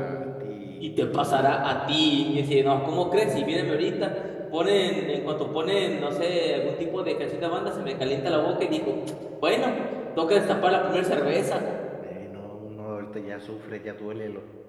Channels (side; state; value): both; identical; correlation 1.00